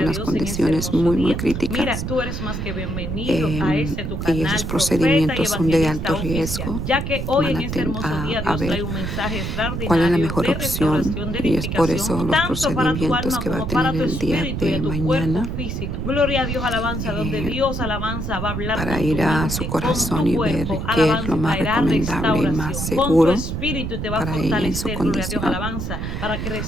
algunas Dios en este condiciones hermoso muy día. Mira, críticas, tú eres más que bienvenido a este tu y esos canal, profeta y procedimientos son de alto evangelista oficial, riesgo. ya que hoy Van en este hermoso día a Dios trae ver un mensaje cuál es la extraordinario mejor de opción, restauración, de y es por edificación, eso los tanto para tu procedimientos alma que va a como tener para tu el día espíritu y de a tu cuerpo mañana, físico. Gloria a Dios, alabanza, donde eh, Dios, alabanza, va a hablar para con tu ir a su mente, con corazón tu y ver cuerpo, qué es lo alabanza, y más traerá recomendable y más restauración, con tu seguro espíritu y te va a para ella en su fortalecer, gloria a Dios, condición. alabanza, para que Así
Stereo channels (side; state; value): right; noise; rumble, 4 dB below the sound